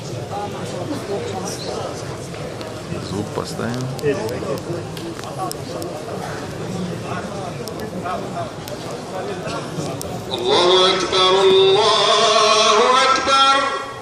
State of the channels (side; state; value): both; identical; correlation 1.00